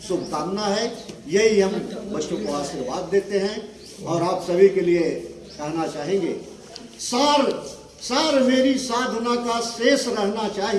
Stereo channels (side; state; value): both; identical; correlation 1.00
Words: शुभकामना है, यही हम बच्चों को आशीर्वाद देते हैं। और आप सभी के लिए कहना चाहेंगे, सार मेरी साधना का शेष रहना